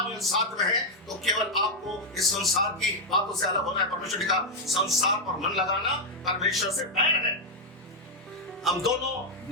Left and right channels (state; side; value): normal; both; correlation 0.00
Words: साथ में है तो केवल आपको इस संसार की बातों से अलग होना है। परमेश्वर ने कहा संसार पर मन लगाना परमेश्वर से बैर है। हम दोनों